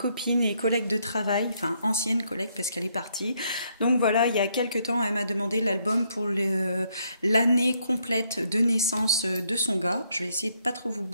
et collègue de travail, enfin ancienne collègue parce qu'elle est partie. Donc voilà, il y a quelques temps, elle m'a demandé l'album pour l'année complète de naissance de son gars. Je vais essayer de pas trop vous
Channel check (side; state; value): both; inverted; correlation -0.73